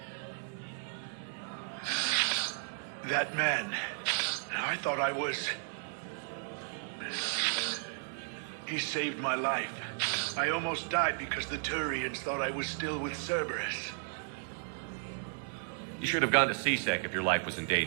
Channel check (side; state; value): left; silent; digital silence